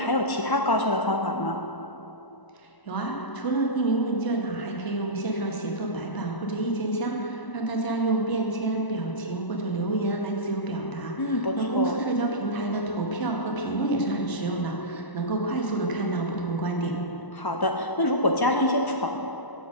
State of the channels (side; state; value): right; late; 1.0 ms